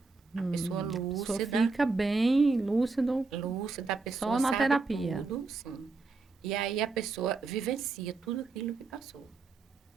A pessoa A lúcida. pessoa fica bem lúcido. Lúcida, a pessoa Só na sabe terapia. tudo, sim. E aí a pessoa vivencia tudo aquilo que passou.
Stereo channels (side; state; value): left; quieter; 4.0 dB